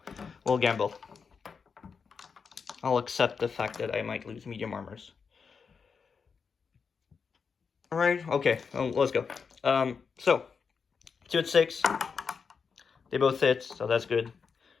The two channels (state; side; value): quieter; right; 5.7 dB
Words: We'll gamble. I'll accept the fact that I might lose medium armors. Alright, okay, let's go. So, 2 at 6. They both hit, so that's good.